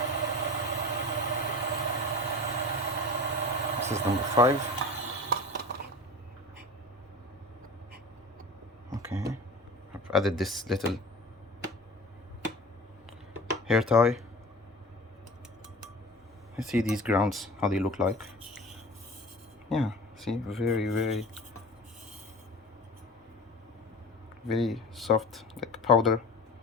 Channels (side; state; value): both; normal; correlation 0.37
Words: This is number 5. Okay, I've added this little hair tie. Let's see these grounds, how they look like. Yeah, see, very, very, very soft, like powder.